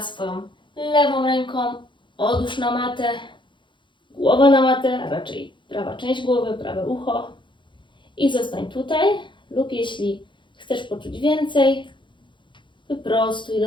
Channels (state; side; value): late; right; 0.23 ms